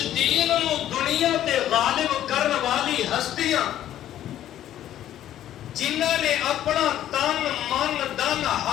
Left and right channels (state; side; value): quieter; right; 12.0 dB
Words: دین نو دنیا تے غالب کرن والی ہستیاں جنہاں نے اپنا تن من دن